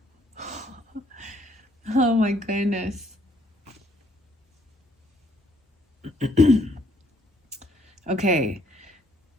Oh my goodness. Okay.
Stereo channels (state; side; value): normal; both; correlation 0.67